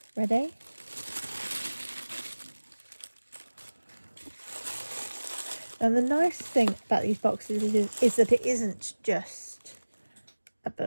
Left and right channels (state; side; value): inverted; both; correlation -1.00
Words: Ready? And the nice thing about these boxes is that it isn't just a